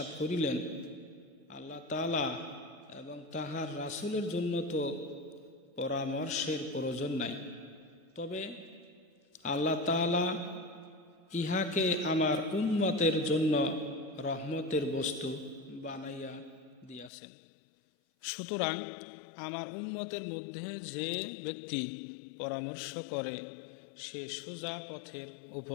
করিলেন, আল্লাহ তাআলা এবং তাহার রাসূলের জন্য তো পরামর্শের প্রয়োজন নাই, তবে আল্লাহ তাআলা ইহাকে আমার উম্মতের জন্য রহমতের বস্তু বানাইয়া দিয়াছেন। সুতরাং আমার উম্মতের মধ্যে যে ব্যক্তি পরামর্শ করে সে সোজা পথের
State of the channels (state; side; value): drops out; right; at 17.1 s